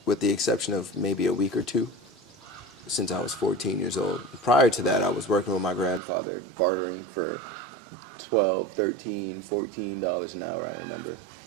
with the exception of maybe a week or two, since I was 14 years old. Prior to that, I was working with my grandfather, bartering for $12, $13, $14 an hour, I remember.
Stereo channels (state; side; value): drops out; left; at 6.0 s